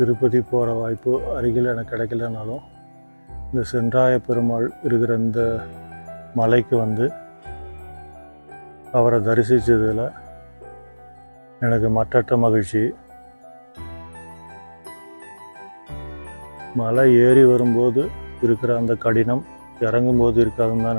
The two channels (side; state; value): both; inverted; correlation -1.00